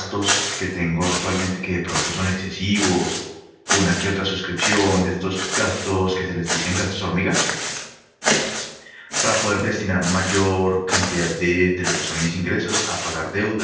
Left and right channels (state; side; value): identical; both; correlation 1.00